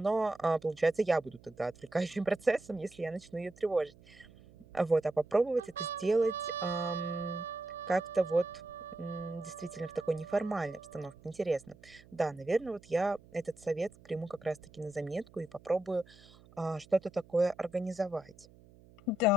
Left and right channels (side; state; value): right; noise; hum, 24 dB below the sound